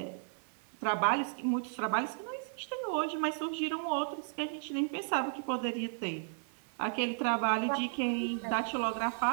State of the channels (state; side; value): silent; left; 55 dB below the other